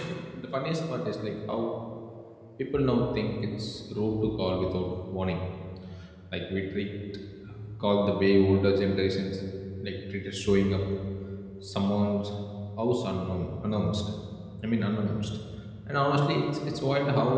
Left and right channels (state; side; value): identical; both; correlation 1.00